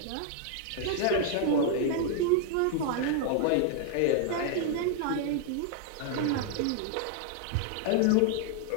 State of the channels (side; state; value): both; different; correlation -0.01